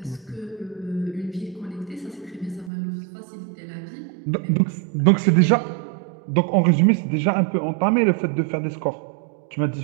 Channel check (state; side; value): drops out; left; at 2.7 s